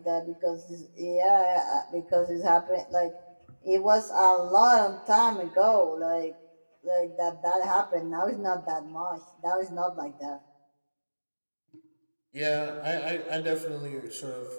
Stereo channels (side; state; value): both; inverted; correlation -1.00